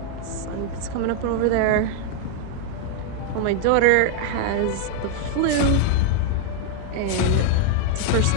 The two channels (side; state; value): both; different; correlation 0.00